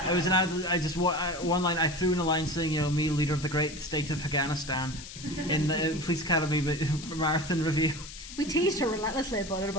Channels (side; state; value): left; noise; hiss, 13 dB below the sound